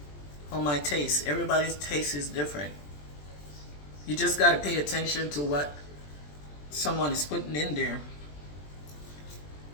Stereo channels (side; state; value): right; late; 20 ms